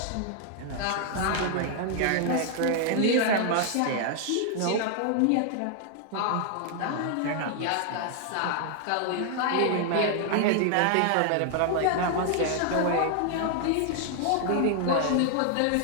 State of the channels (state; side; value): different; both; correlation 0.00